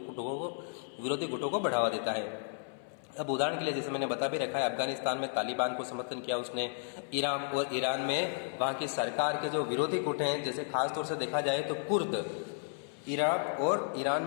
गुटों को बढ़ावा देता है। अब उदाहरण के लिए जैसे मैंने बता भी रखा है, अफगानिस्तान में तालिबान को समर्थन किया उसने, इराक और ईरान में वहाँ की सरकार के जो विरोधी गुट हैं, जैसे खासतौर से देखा जाए तो कुर्द, इराक और ईरान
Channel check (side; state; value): right; silent; 56 dB below the other